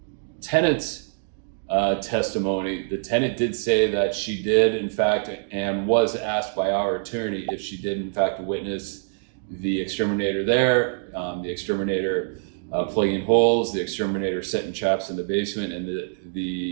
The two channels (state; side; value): silent; left; digital silence